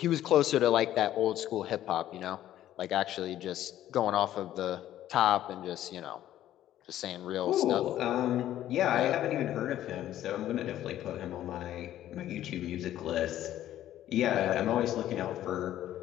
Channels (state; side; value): quieter; right; 12.6 dB